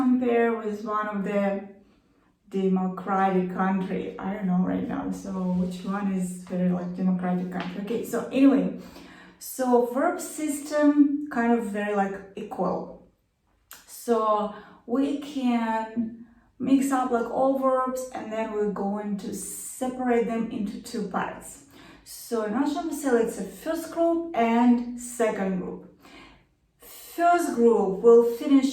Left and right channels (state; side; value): identical; both; correlation 1.00